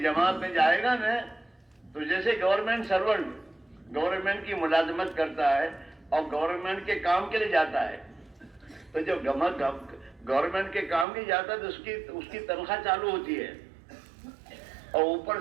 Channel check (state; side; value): drops out; left; at 11.1 s